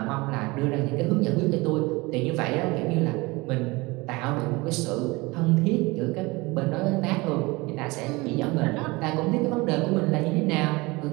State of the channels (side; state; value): left; quieter; 23.6 dB